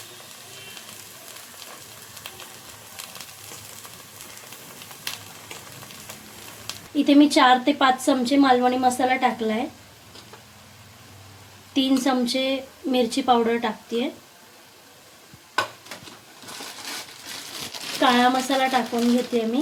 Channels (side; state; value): both; identical; correlation 1.00